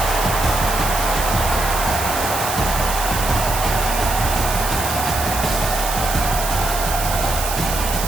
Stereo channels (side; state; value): right; noise; hiss, 5 dB below the sound